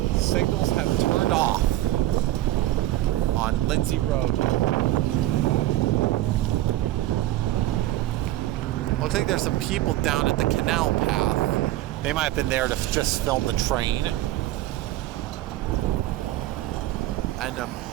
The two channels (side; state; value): left; quieter; 15.6 dB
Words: signals have turned off on Lindsay Road. Looks like there's some people down at the canal path. They might have been there to just film the train. And